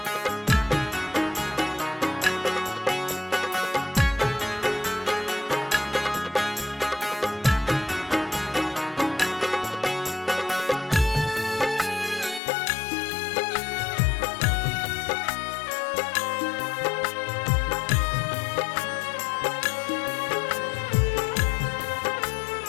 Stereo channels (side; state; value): right; drops out; at 12.4 s